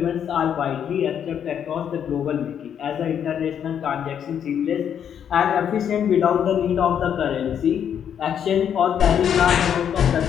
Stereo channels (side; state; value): right; quieter; 8.7 dB